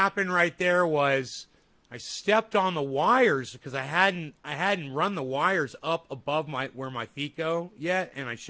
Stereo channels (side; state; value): both; identical; correlation 1.00